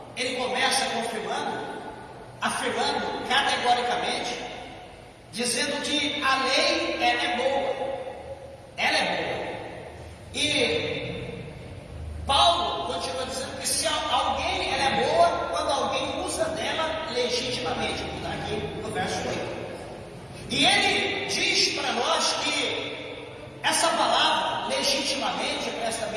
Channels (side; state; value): both; identical; correlation 1.00